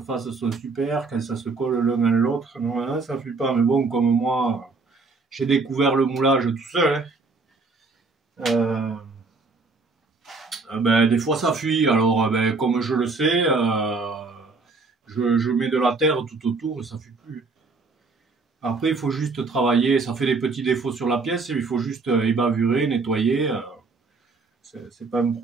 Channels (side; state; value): left; quieter; 4.0 dB